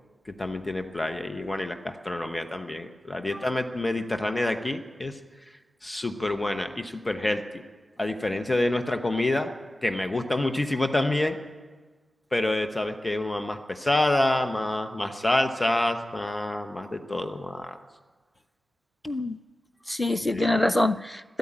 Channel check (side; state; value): both; normal; correlation 0.95